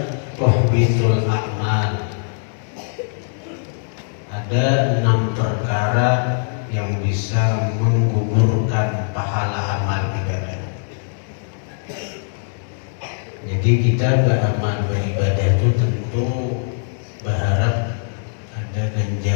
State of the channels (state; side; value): silent; right; 65 dB below the other